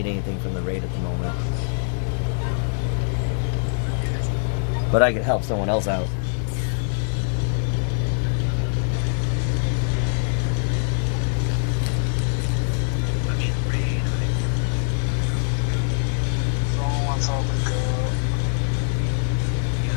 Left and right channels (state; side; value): silent; right; digital silence